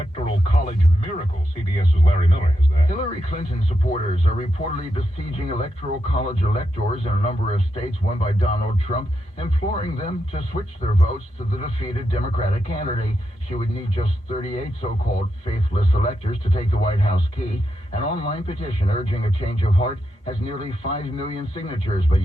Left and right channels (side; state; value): both; normal; correlation 0.85